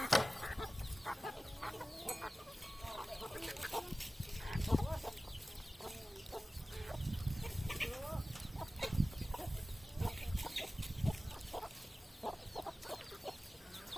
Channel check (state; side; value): normal; both; correlation 0.96